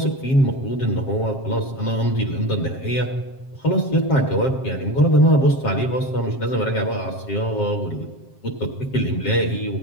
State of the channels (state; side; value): late; right; 7.5 ms